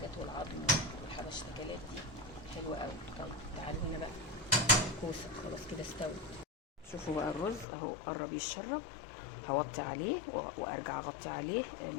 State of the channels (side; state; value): right; drops out; at 7.7 s